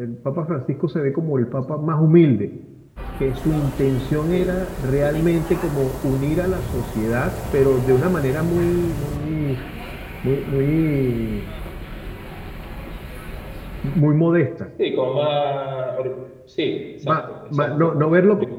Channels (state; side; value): identical; both; correlation 1.00